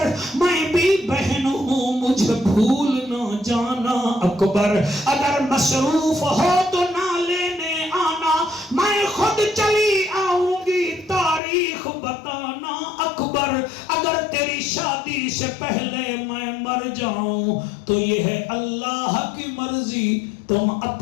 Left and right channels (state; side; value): drops out; right; at 11.4 s